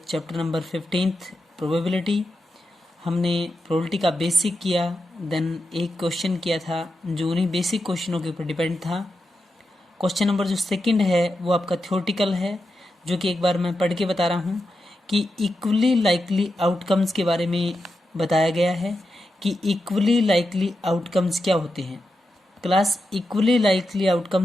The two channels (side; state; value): both; normal; correlation 0.88